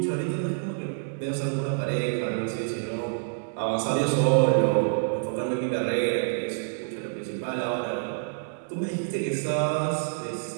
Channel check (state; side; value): silent; left; 60 dB below the other